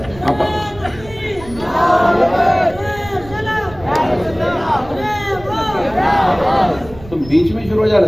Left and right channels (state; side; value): noise; right; rumble, 18 dB below the sound